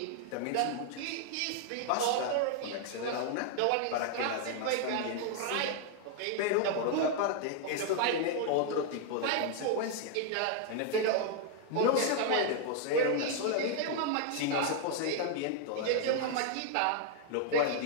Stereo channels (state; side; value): different; both; correlation 0.00